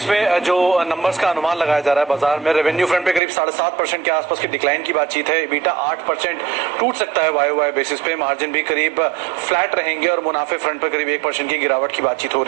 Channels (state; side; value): drops out; left; at 3.2 s